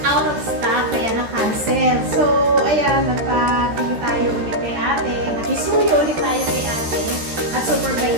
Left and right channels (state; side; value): late; left; 13 ms